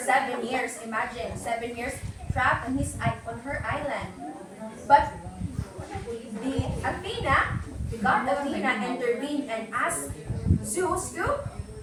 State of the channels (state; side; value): identical; both; correlation 1.00